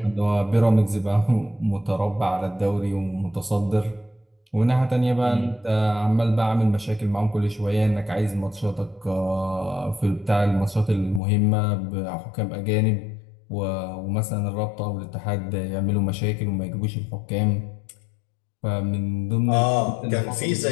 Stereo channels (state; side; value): drops out; right; at 11.2 s